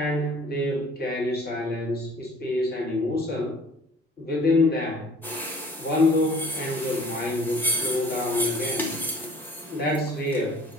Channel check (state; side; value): normal; both; correlation 0.51